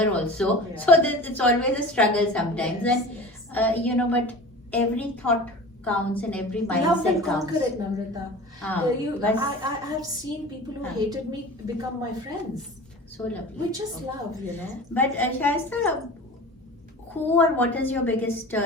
also, so it's always a struggle sometimes, and you know, but every thought counts and every mindset Love and counts. conquer it, Namrita. I have seen people who hated me become my friends. So lovely. We just love, you know. But Shaista, who or what is your biggest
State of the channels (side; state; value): both; normal; correlation 0.37